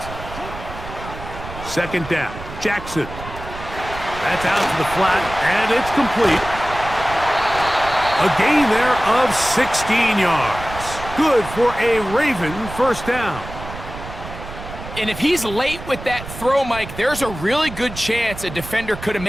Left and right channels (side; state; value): right; noise; rumble, 12 dB below the sound